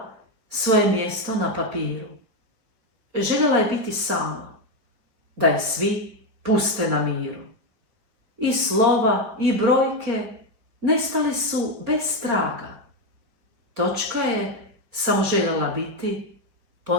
svoje mjesto na papiru. Željela je biti sama, da je svi puste na miru. I slova i brojke nestali su bez traga. Točka je samo željela biti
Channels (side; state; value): left; late; 4.8 ms